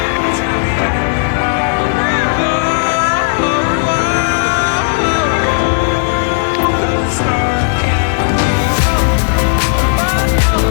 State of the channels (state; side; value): silent; right; digital silence